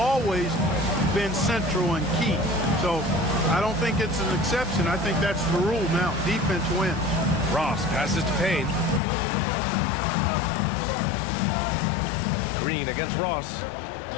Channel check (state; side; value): drops out; right; at 9.0 s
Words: been central and key. So I don't think it's an exception. I think that's the rule now. Defense wins. Ross passes to Payne. Green against Ross.